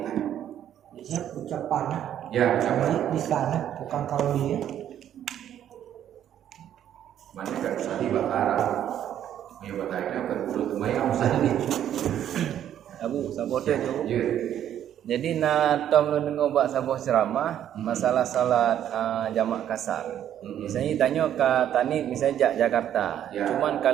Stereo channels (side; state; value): left; quieter; 10.6 dB